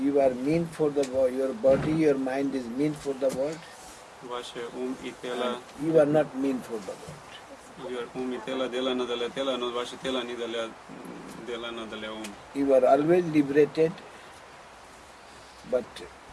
are meant for the world, your body, your mind is meant for the world, Ваше ум и тело, and you are not meant for the world. ум и тело делано для тела, но ваше тело не делано для ум. You are always liberated, but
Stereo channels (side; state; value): both; identical; correlation 1.00